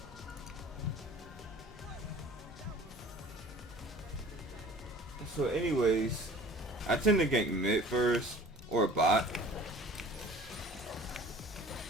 So anyways, I tend to gank mid first or bot.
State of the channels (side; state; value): both; normal; correlation 0.46